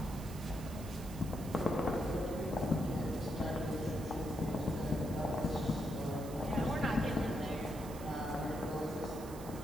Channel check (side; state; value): right; noise; hiss, 16 dB below the sound